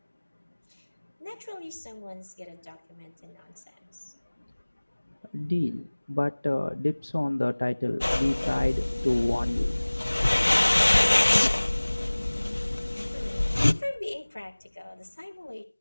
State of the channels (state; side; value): inverted; both; correlation -1.00